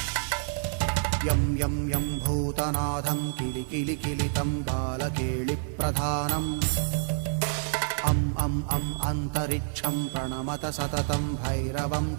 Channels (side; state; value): left; silent; 59 dB below the other